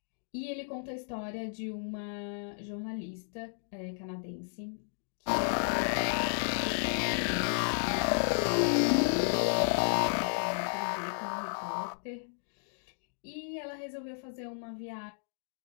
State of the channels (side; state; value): right; silent; digital silence